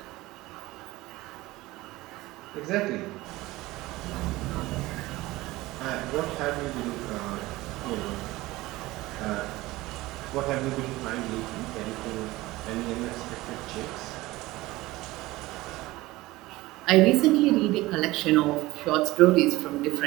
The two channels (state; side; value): quieter; left; 19.0 dB